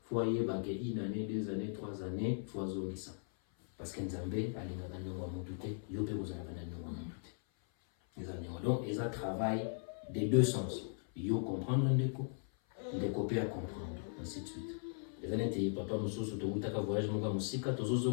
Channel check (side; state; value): right; silent; 52 dB below the other